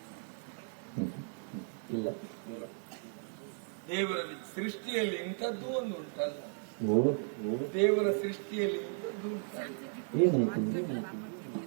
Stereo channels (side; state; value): left; silent; 54 dB below the other